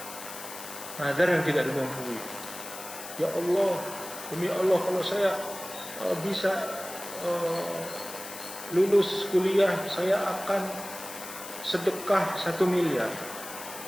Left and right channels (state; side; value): noise; left; hiss, 12 dB below the sound